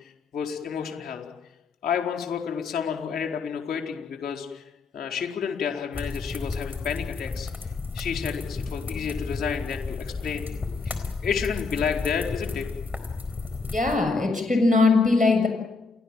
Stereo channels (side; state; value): right; quieter; 4.3 dB